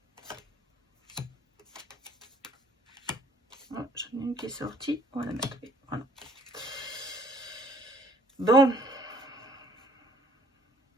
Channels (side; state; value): both; normal; correlation 0.58